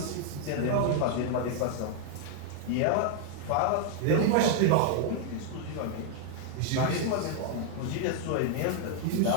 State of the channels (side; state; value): both; different; correlation 0.00